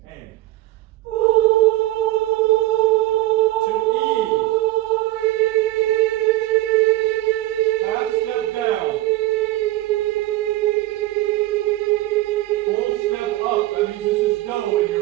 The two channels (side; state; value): left; quieter; 17.0 dB